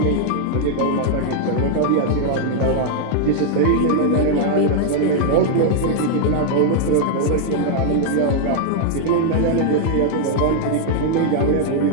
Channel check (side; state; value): both; different; correlation 0.00